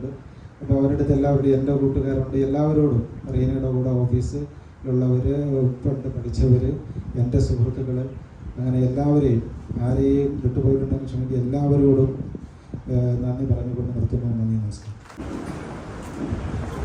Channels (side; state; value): both; identical; correlation 1.00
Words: അപ്പോൾ അവരുടെ അടുത്ത് എല്ലാവരുടെയും എൻ്റെ കൂട്ടുകാരുണ്ട്. എല്ലാവരോടും റീനയുടെ കൂടെ ഓഫീസിലുള്ളവർ, പണ്ട് പഠിച്ചവർ, എൻ്റെ സുഹൃത്തുക്കൾ, അങ്ങനെ എല്ലാവരെയും ആരെയും വിട്ടുപോയിട്ടുണ്ടെങ്കിൽ ക്ഷമിക്കുക, എല്ലാവരോടും നന്ദി പറഞ്ഞുകൊണ്ട് നിർത്തുന്നു. നന്ദി, നമസ്കാരം.